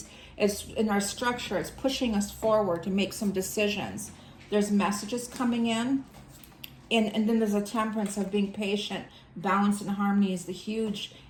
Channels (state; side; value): identical; both; correlation 1.00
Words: It's in our structure. It's pushing us forward to make some decisions. There's messages coming in. And then there's a temperance of being patient. Balance and harmony is the huge